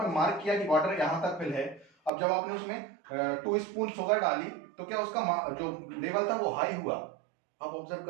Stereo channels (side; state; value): left; drops out; at 2.1 s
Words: मार्क किया कि वाटर यहां तक फिल है। अब जब आपने उसमें 2 स्पून शुगर डाली तो क्या उसका जो लेवल था वो हाई हुआ। आप ऑब्जर्व